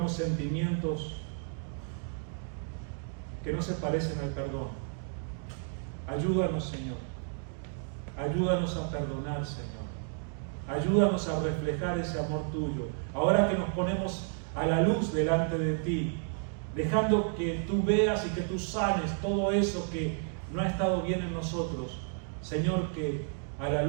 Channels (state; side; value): silent; left; 55 dB below the other